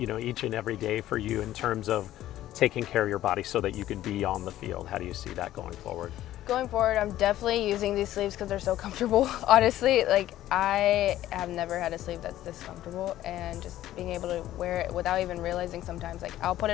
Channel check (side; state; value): right; quieter; 13.6 dB